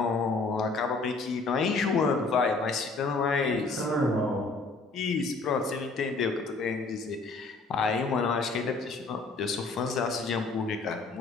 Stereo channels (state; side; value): quieter; right; 3.7 dB